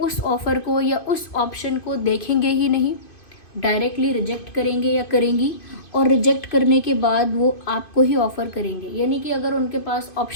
ऑफ़र को या उस ऑप्शन को देखेंगे ही नहीं, डायरेक्टली रिजेक्ट करेंगे या करेंगी, और रिजेक्ट करने के बाद वो आपको ही ऑफ़र करेंगे। यानी कि अगर उनके पास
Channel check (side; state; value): right; late; 2.5 ms